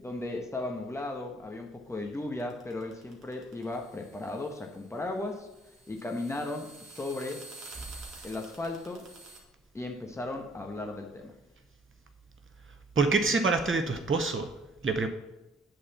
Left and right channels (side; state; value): both; normal; correlation 0.60